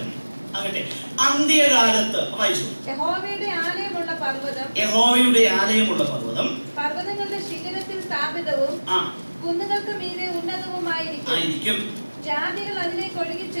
ആകട്ടെ, അന്ത്യകാലത്ത് വായിച്ചു. യഹോവയുടെ ആലയമുള്ള പർവ്വതം പർവ്വതങ്ങളുടെ ശിഖരത്തിൽ സ്ഥാപിതവും കുന്നുകൾക്ക് മീതെ ഉന്നതവുമായിരിക്കും. ജാതികൾ അതിലേക്ക് ഒഴുകി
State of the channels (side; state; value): both; inverted; correlation -1.00